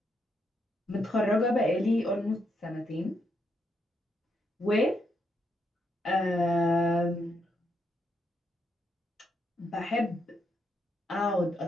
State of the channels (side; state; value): both; normal; correlation 0.79